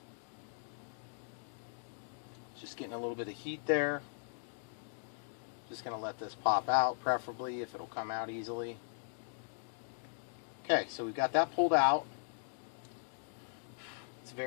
Just getting a little bit of heat there. Just going to let this pop out, preferably if it'll come out easily. Okay, so we've got that pulled out. It's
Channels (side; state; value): right; silent; digital silence